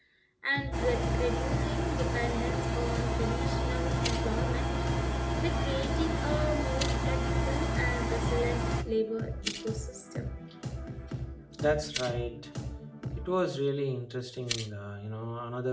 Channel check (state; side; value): identical; both; correlation 1.00